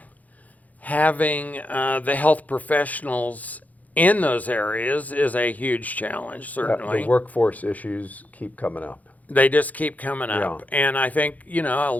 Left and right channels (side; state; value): right; late; 0.077 ms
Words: the health professionals in those areas is a huge challenge, certainly. The workforce issues keep coming up. They just keep coming up. Yeah. And I think, a